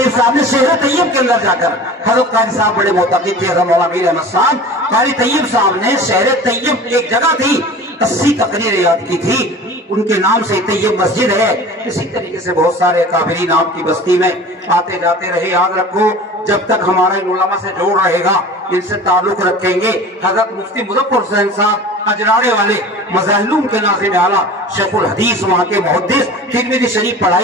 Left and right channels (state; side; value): normal; both; correlation 0.39